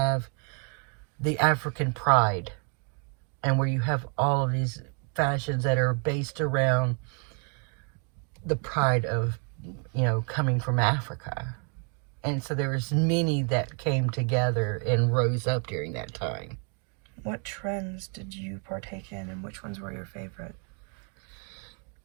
the African pride, and where you have all of these fashions that are based around the pride of, coming from Africa. And so there was many that came together and rose up during that time. What trends did you partake in, and which ones were your favorite?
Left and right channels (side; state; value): left; quieter; 39.5 dB